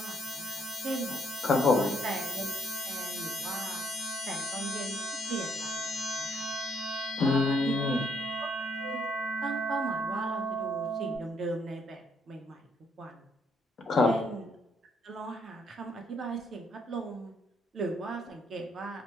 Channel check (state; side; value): normal; both; correlation 0.70